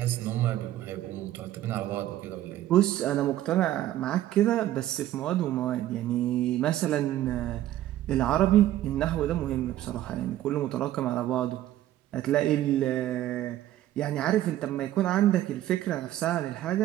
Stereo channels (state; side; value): quieter; left; 13.5 dB